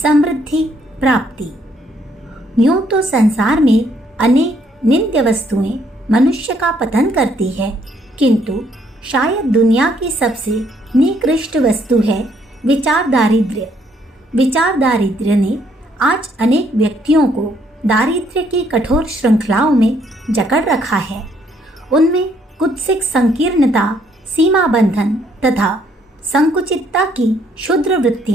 प्राप्ति। यूं तो संसार में अनेक नित्य वस्तुएं मनुष्य का पतन करती है, किंतु शायद दुनिया की सबसे निकृष्ट वस्तु है विचार दारिद्र्य। विचार दारिद्र्य ने आज अनेक व्यक्तियों को दारिद्र्य की कठोर श्रृंखलाओं में जकड़ रखा है। उनमें कुत्सित संकीर्णता, सीमा बंधन तथा संकुचितता की क्षुद्र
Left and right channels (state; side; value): normal; both; correlation 0.68